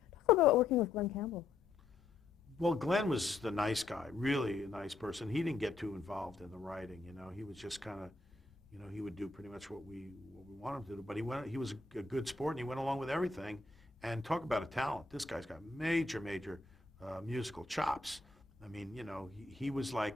Talk about working with Glenn Campbell. Well, Glenn was the nice guy, really a nice person. He didn't get too involved in the writing, He was just kind of, he would do pretty much what we wanted him to do. But he was a good sport, and he went along with everything. And talk about a talent. This guy's got major musical chops. I mean, he was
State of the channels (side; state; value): right; quieter; 3.6 dB